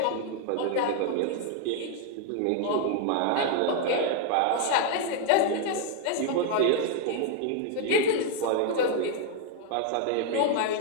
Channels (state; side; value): different; both; correlation 0.00